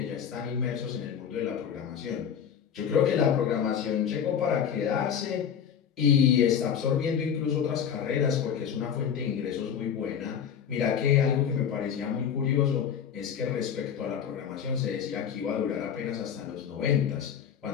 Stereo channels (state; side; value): quieter; right; 8.2 dB